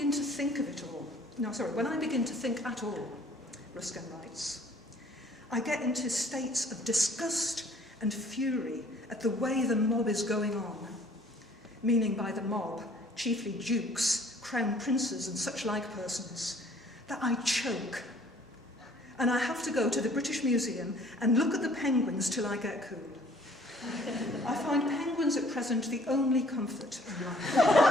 to think at all, Ruskin writes, I get into states of disgust and fury at the way the mob is going on. Meaning by the mob, chiefly dukes, crown princes and such like persons, that I choke. And I have to go to the British Museum and look at the penguins till I get cool. I find penguins at present the only comfort in life.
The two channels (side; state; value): both; normal; correlation 0.57